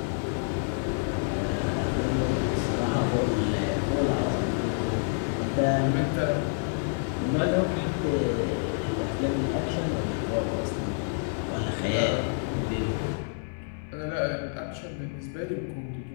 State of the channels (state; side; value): silent; right; 59 dB below the other